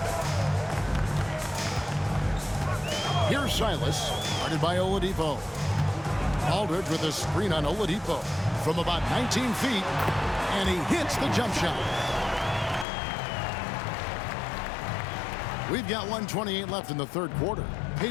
Here's Silas, guarded by Oladipo. Aldridge with a screen on Oladipo from about 19 feet, and he hits the jump shot. We've got 1:28 left in the third quarter.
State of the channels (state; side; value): drops out; right; at 12.9 s